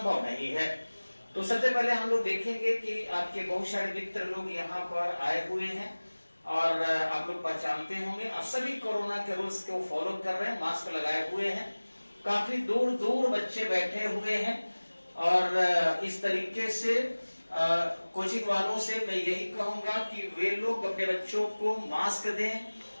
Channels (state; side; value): inverted; both; correlation -1.00